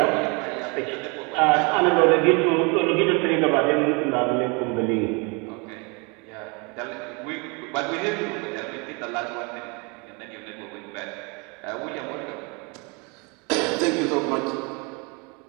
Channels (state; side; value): quieter; left; 30.8 dB